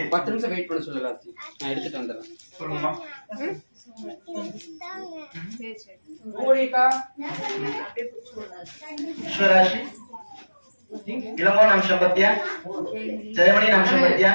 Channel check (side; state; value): both; inverted; correlation -1.00